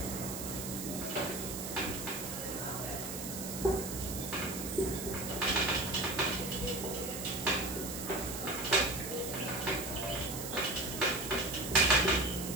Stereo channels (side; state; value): right; noise; hiss, 7 dB below the sound